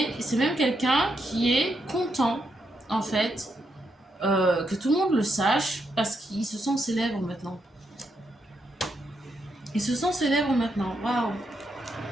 c'est même quelqu'un qui est content, en fait, que tout le monde le sache, parce qu'il se sent célèbre maintenant. Il se sent célèbre maintenant. Waouh.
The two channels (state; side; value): normal; both; correlation 0.81